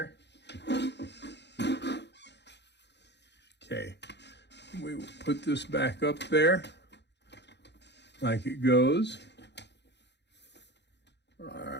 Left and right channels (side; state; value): right; late; 0.50 ms